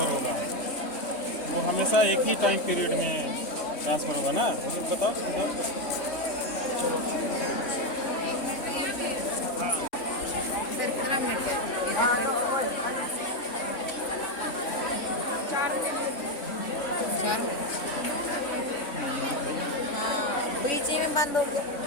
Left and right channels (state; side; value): late; right; 3.5 ms